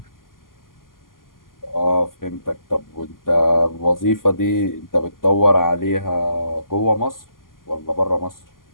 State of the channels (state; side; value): late; right; 0.91 ms